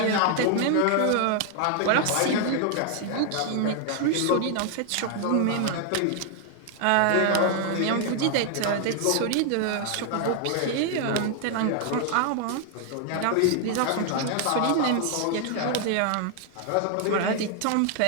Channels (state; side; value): different; both; correlation 0.00